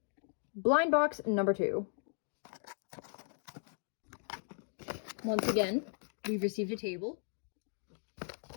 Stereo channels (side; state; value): right; silent; digital silence